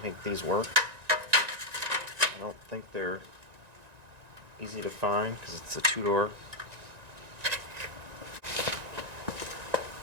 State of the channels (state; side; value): late; left; 1.9 ms